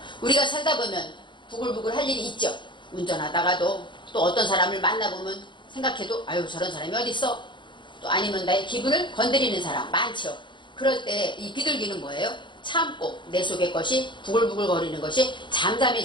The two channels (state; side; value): late; right; 0.23 ms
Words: 우리가 살다 보면 부글부글 할 일이 있죠. 운전하다가도 또 어떤 사람을 만나보면 생각해도 아유 저런 사람이 어디 있어? 또 아니면 나의 기분을 건드리는 사람 많죠. 그럴 때 이 비둘기는 뭐예요? 참고 내 속의 것이 부글부글 거리는 것이